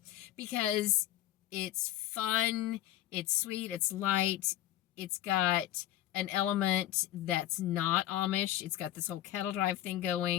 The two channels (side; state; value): right; quieter; 13.5 dB